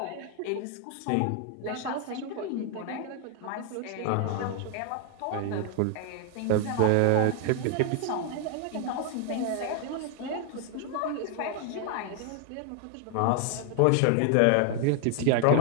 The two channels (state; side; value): different; both; correlation 0.00